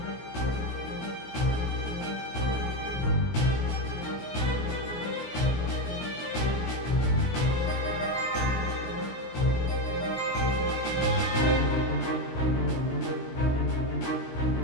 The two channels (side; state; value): right; late; 16 ms